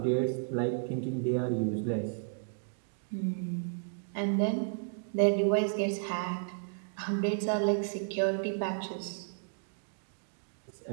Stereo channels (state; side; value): silent; left; digital silence